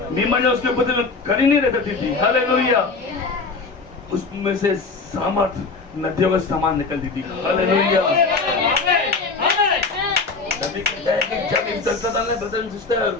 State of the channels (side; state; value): right; quieter; 4.2 dB